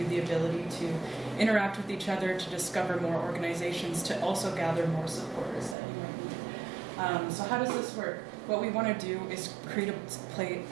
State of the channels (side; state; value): left; drops out; at 5.8 s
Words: the ability to interact with each other, to discover more organizations, to also gather more supporters that you might need. So how does this work? What we want to do is create